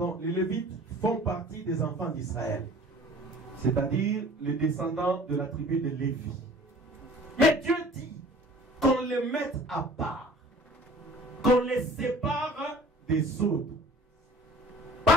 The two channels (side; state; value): both; normal; correlation 0.48